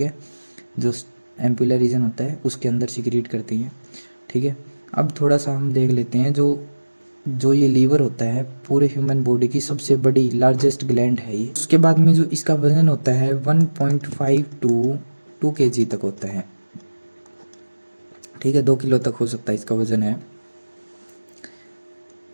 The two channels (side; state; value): both; inverted; correlation -1.00